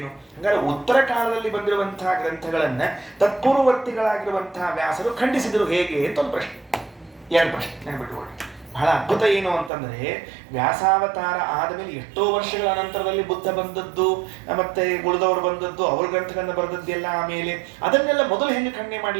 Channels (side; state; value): left; drops out; at 9.7 s